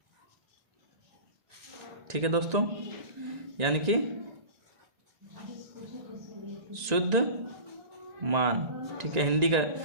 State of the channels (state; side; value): late; left; 2.0 ms